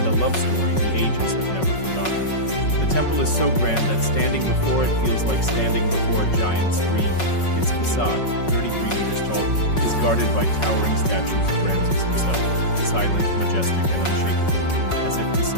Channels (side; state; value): right; late; 5.4 ms